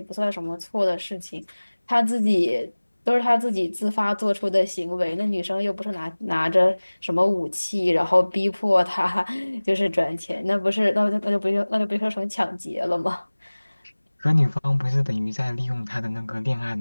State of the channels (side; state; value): both; inverted; correlation -1.00